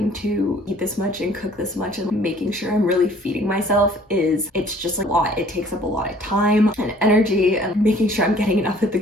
to eat this much and cook this much and making sure I'm really feeding myself it's just like a lot. It takes up a lot of time and energy, and making sure I'm getting enough at the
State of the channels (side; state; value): both; normal; correlation 0.55